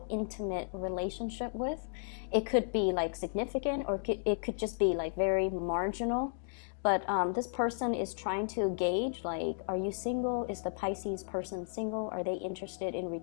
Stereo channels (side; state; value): right; silent; digital silence